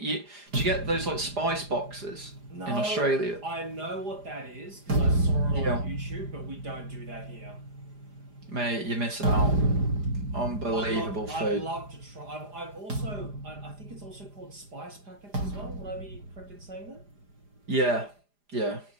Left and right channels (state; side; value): late; left; 4.9 ms